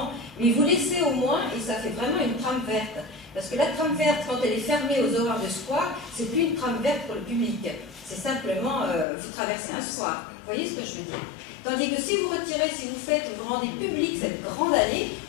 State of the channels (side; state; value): right; drops out; at 9.1 s